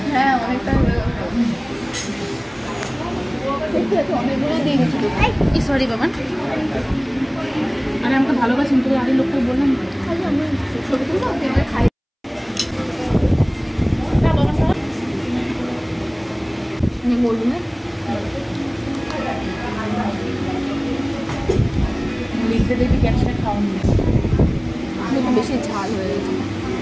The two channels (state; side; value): identical; both; correlation 1.00